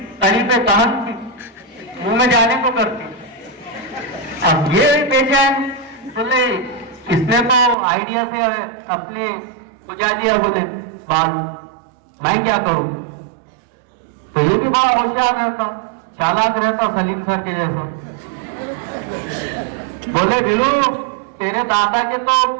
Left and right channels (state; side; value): drops out; left; at 7.8 s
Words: कहन थी, मुंह में जाने को करती। अब ये बेचैन, बोले इसने तो आइडिया से अपने बुझा दिया। बोले बाल, मैं क्या करूं? तो ये भी बड़ा होशियार रहता, चालाक रहता, सलीम सर के जैसा। बोले बिल्लू तेरे दादा के तो